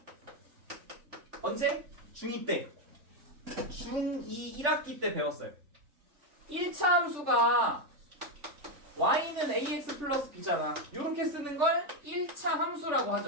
언제? 중2 때. 중2 1학기 때 배웠어요. 1차 함수가 y는 ax 플러스 b잖아. 이렇게 쓰는 걸 1차 함수라고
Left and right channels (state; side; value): late; left; 3.5 ms